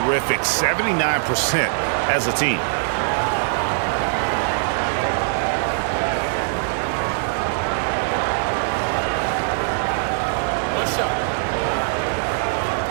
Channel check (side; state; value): left; silent; 64 dB below the other